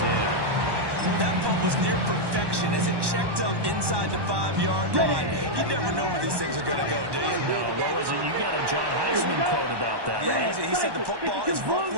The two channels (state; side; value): late; left; 1.1 ms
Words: 10. That punt was near perfection as it checked up inside the 5-yard line. You never know where these things are going to go, do you? No, what was it? You got a John Heisman quote about that, yeah, right? He said the football is